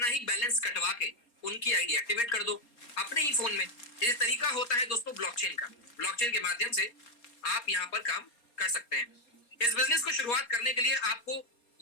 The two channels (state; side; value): late; right; 4.3 ms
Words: ही बैलेंस कटवा के उनकी आईडी एक्टिवेट कर दो अपने ही फोन में। ये तरीका होता है दोस्तों ब्लॉकचेन का। ब्लॉकचेन के माध्यम से आप यहाँ पर काम कर सकते हैं। इस बिजनेस को शुरुआत करने के लिए आपको,